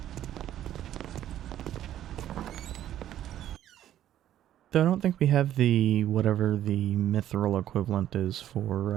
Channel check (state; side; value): quieter; left; 11.9 dB